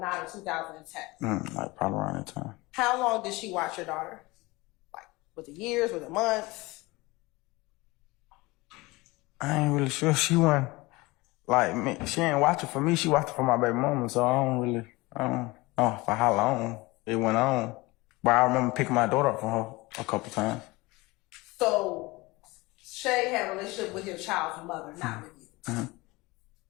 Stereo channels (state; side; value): quieter; right; 22.5 dB